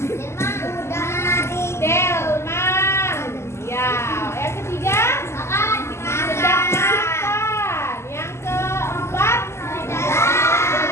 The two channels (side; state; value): right; late; 0.13 ms